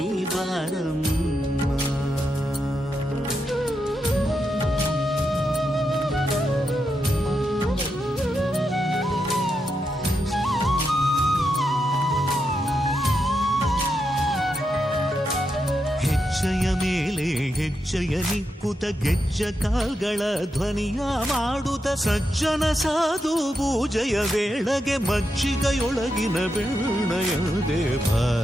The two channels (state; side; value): normal; both; correlation 0.85